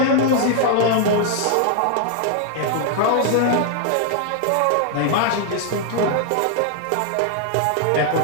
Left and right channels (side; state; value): both; different; correlation 0.00